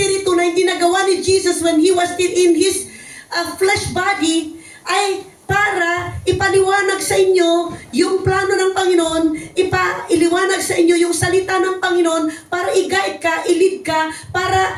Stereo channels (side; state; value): both; identical; correlation 1.00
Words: na hindi nagawa ni Jesus when He was still in His flesh body ay para ipaliwanag sa inyo yung plano ng Panginoon, iliwanag sa inyo yung salita ng Panginoon para i-guide ka, i-lead ka,